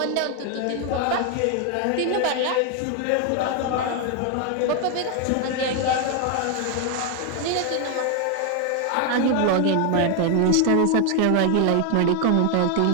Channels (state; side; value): different; both; correlation 0.01